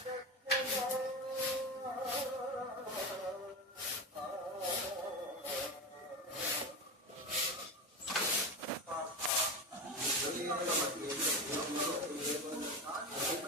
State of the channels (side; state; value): both; normal; correlation 0.21